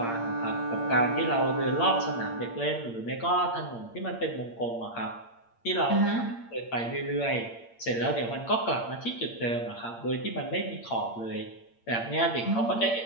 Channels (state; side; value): late; right; 8.7 ms